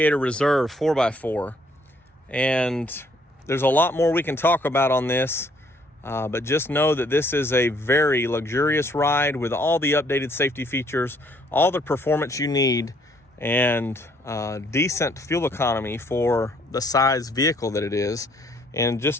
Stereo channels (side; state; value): both; normal; correlation 0.65